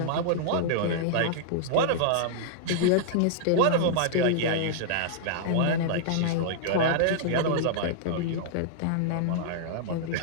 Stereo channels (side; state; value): both; different; correlation -0.01